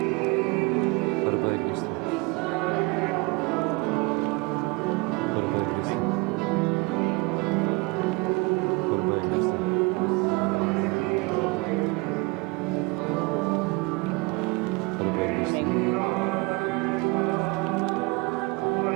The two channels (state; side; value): quieter; left; 26.4 dB